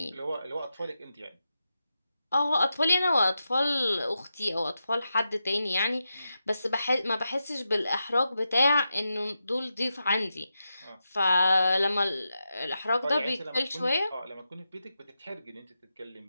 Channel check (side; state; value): both; inverted; correlation -0.89